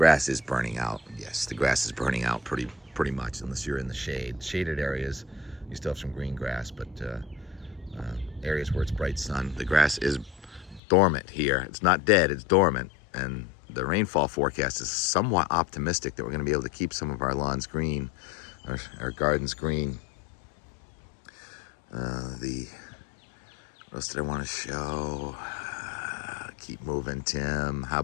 is burning out. Yes, the grass is burning out pretty much, unless you're in the shade. Shaded areas, you still have some green grass, but areas where it's bright sun, the grass is dormant here. It's not dead, it's dormant. And the rainfall forecast is somewhat optimistic that we're going to be able to keep some of our lawns green, our gardens green. What else did I want to show? Keep moving, Tim. How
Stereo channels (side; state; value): right; drops out; at 10.8 s